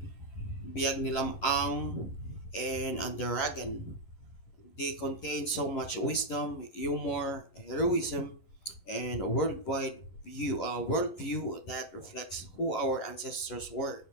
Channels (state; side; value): late; right; 11 ms